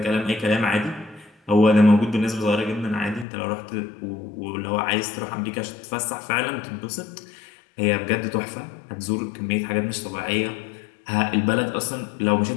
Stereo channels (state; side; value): drops out; right; at 3.2 s